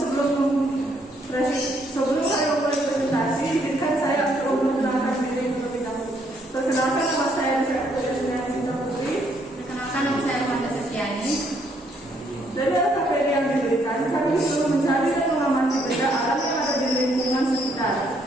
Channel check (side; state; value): both; normal; correlation 0.70